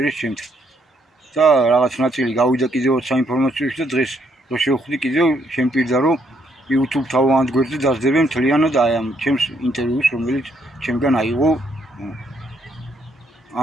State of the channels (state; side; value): normal; both; correlation 0.72